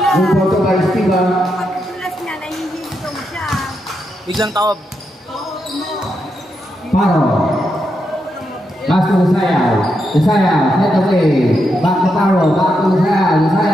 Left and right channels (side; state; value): both; normal; correlation 0.83